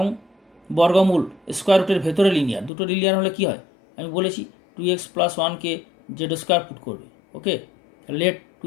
বর্গমূল স্কোয়ার রুটের ভেতরে লিনিয়ার, দুটো লিনিয়ার হলে কি হয় আমি বলেছি, 2x + 1কে z² পুট করবে। ওকে, লেট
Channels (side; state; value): right; drops out; at 2.7 s